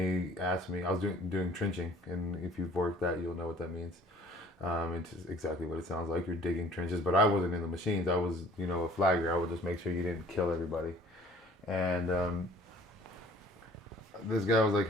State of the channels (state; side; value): normal; both; correlation 0.53